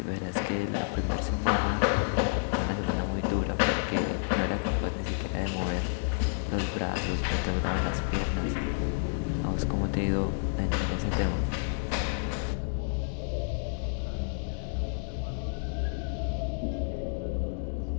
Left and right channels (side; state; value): right; silent; digital silence